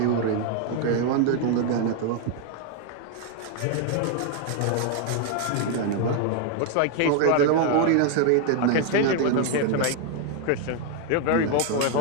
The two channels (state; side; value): different; both; correlation 0.00